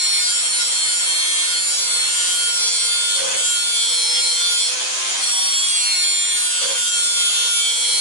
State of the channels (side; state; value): right; late; 10 ms